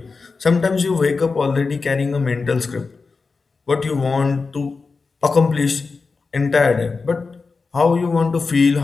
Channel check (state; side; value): quieter; right; 4.4 dB